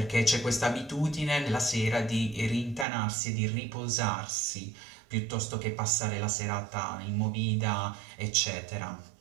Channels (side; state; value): left; drops out; at 2.9 s